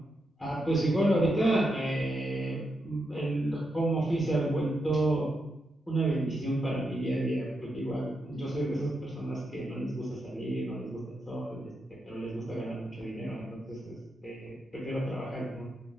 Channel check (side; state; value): both; normal; correlation 0.84